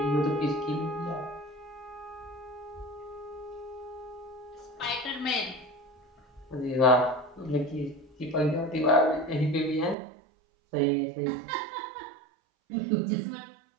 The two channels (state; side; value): drops out; left; at 10.0 s